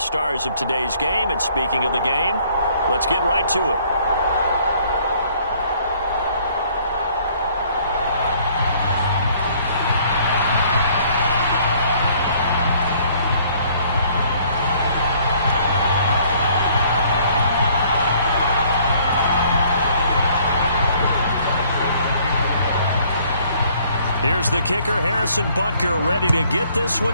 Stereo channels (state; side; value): inverted; both; correlation -0.60